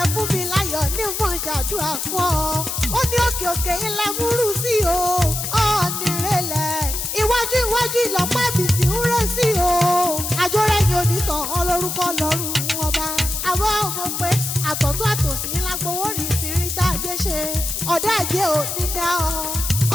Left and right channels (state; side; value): noise; left; hiss, 3 dB below the sound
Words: fún mi láyọ̀ ní mọ̀ ṣàdúrà fún ọ ó ní òkè òkè ilẹ̀ múrù sí o ọ̀nìrẹ̀lẹ̀ iwájú ìlọ́pàá ìbìtì ń rẹ̀ sí o àjọrẹ́yìn onítàn ọlọ́rúkọ lọ́rùn ọba àwọn ọmọ pé àtọ̀tún àtòsí lágbowó rí ìfìrí tá a jẹ́ ṣe ọ̀dà àjẹ́ ò ní dá